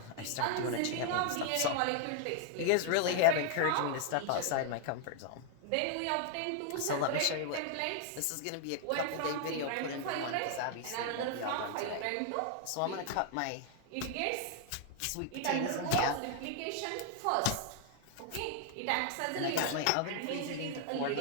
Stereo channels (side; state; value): both; different; correlation 0.00